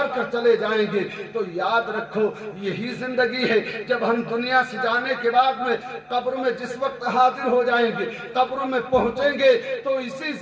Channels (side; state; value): both; identical; correlation 1.00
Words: کر چلے جائیں گے۔ تو یاد رکھو یہی زندگی ہے، جب ہم دنیا سے جانے کے بعد میں قبر میں جس وقت حاضر ہو جائیں گے، قبر میں پہنچیں گے، تو اسی